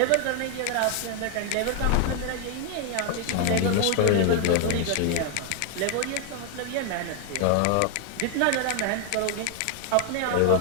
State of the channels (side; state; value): both; different; correlation 0.00